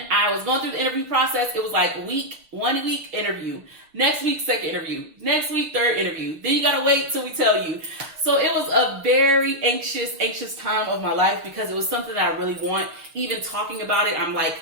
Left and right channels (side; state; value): left; late; 6.6 ms